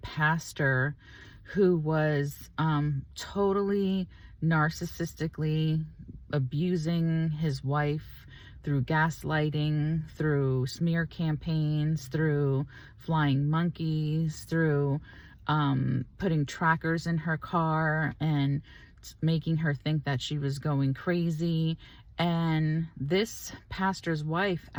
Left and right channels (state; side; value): identical; both; correlation 1.00